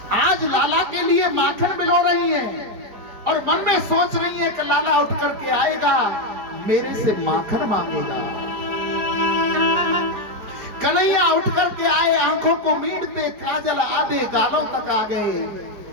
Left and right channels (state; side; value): late; left; 4.9 ms